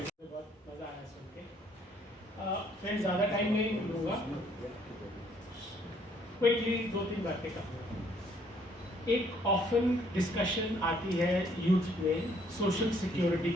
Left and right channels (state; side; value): normal; both; correlation 0.64